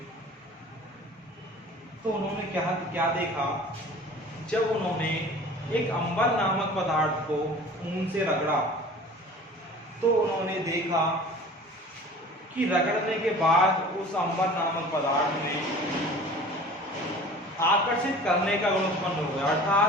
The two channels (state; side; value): normal; both; correlation 0.43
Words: तो उन्होंने क्या देखा, जब उन्होंने एक अंबर नामक पदार्थ को ऊन से रगड़ा तो उन्होंने देखा कि रगड़ने के बाद उस अंबर नामक पदार्थ में आकर्षित करने का गुण उत्पन्न हो गया।